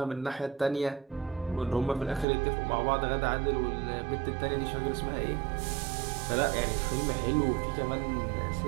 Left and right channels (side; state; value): left; drops out; at 2.2 s